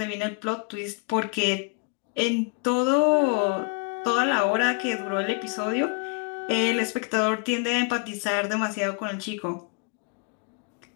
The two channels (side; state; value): right; quieter; 33.4 dB